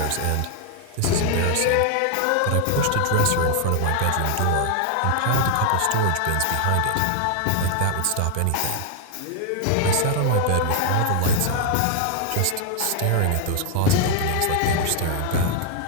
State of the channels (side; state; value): both; different; correlation 0.00